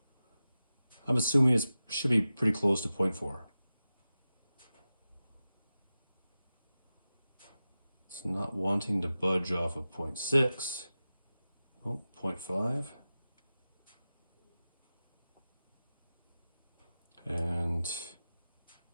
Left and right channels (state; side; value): inverted; both; correlation -0.94